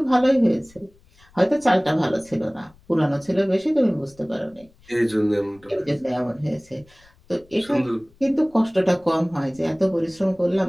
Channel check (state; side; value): noise; left; rumble, 29 dB below the sound